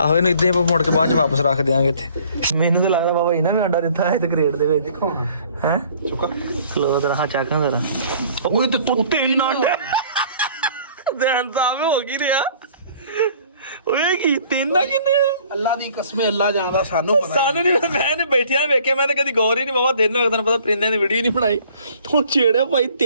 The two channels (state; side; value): inverted; both; correlation -0.55